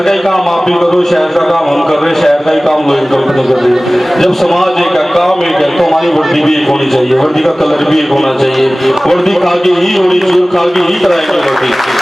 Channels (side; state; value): both; normal; correlation 0.98